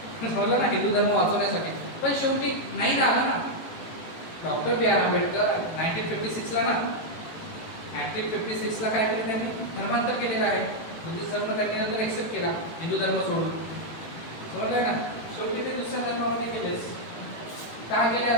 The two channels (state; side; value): late; right; 18 ms